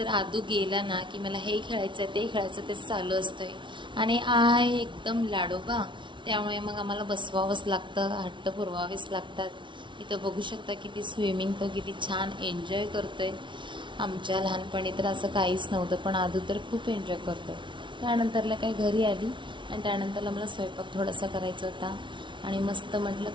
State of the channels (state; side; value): late; left; 0.24 ms